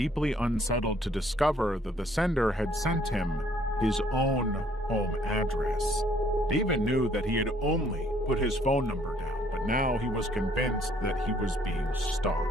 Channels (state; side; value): normal; both; correlation 0.63